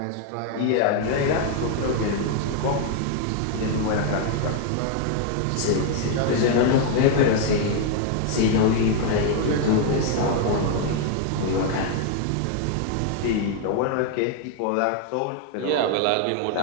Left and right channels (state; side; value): different; both; correlation 0.00